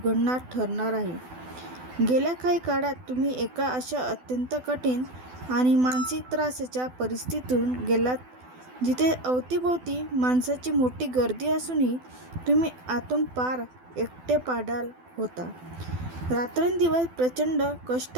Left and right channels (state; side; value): late; left; 12 ms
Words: ठरणार आहे. गेल्या काही काळात तुम्ही एका अशा अत्यंत कठीण आणि मानसिक त्रासाच्या परिस्थितीतून गेलात जिथे अवतीभोवती माणसाची मोठी गर्दी असूनही तुम्ही आतून पार एकटे पाडाल होता. रात्रंदिवस प्रचंड कष्ट